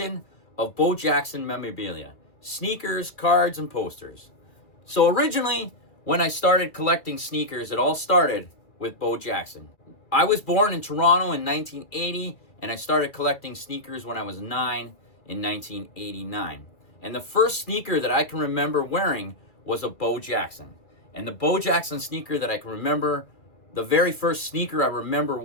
of Bo Jackson memorabilia, sneakers, cards, and posters. So originally, when I started collecting sneakers, it all started with Bo Jackson. I was born in Toronto in 1980, and I started collecting sneakers when I was 9 in 1989. And the first sneaker that I can remember wearing was a Bo Jackson. And the Bo Jackson sneaker that I can remember, the very first sneaker I remember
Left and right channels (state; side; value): late; right; 2.3 ms